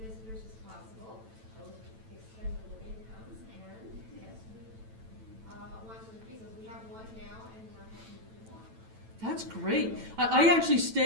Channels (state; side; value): late; left; 9.0 ms